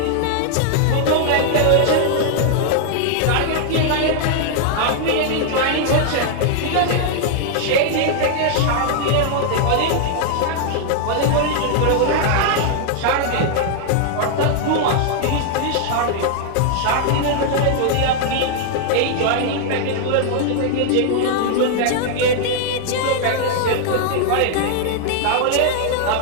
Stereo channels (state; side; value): different; both; correlation 0.00